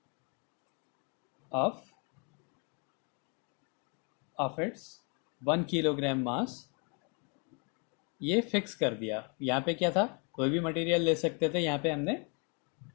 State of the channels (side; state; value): right; quieter; 35.9 dB